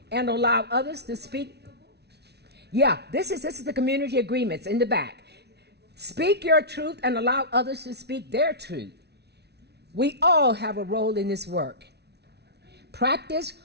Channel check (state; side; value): late; left; 0.49 ms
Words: and allow others to speak. Yeah, this is the community agreements in the back. Speak your truth and allow others to speak their truth. We all have a role in this work. Practice